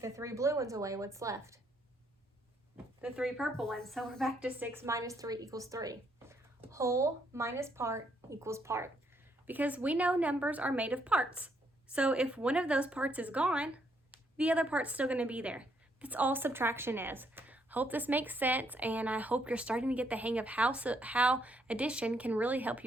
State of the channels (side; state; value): both; normal; correlation 0.72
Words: the 3 blue ones away, what's left? The 3 purple ones. So we're back to 6 minus 3 equals 3. Whole minus part equals part. Because we know numbers are made of parts. So if one of those parts is gone, the other part's still going to be there. That's all subtraction is. Hope this makes sense, and I hope you're starting to get the hang of how addition can really help